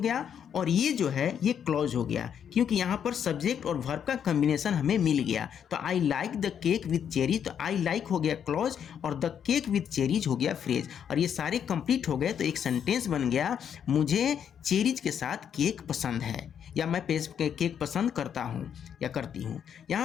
और ये जो है ये क्लॉज हो गया, क्योंकि यहाँ पर सब्जेक्ट और वर्ब का कॉम्बिनेशन हमें मिल गया। तो I like the cake with cherries, तो आई लाइक हो गया क्लॉज और द केक विथ चेरीज हो गया फ्रेज, और ये सारे कंप्लीट हो गए तो एक सेंटेंस बन गया, मुझे चेरीज के साथ केक पसंद है, या मैं केक पसंद करता हूँ या करती हूँ।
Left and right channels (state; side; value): quieter; right; 8.4 dB